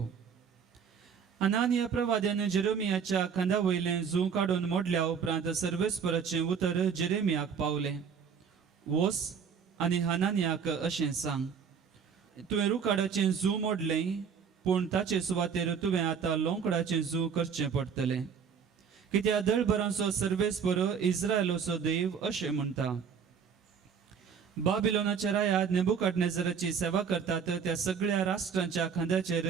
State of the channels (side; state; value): left; quieter; 6.7 dB